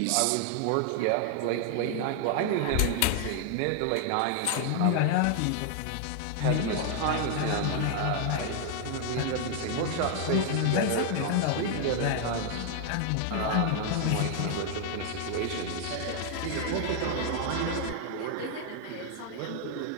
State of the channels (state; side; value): different; both; correlation 0.00